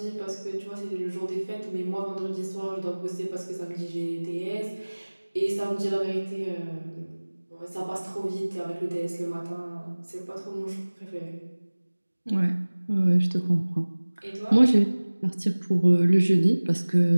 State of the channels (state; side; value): inverted; both; correlation -1.00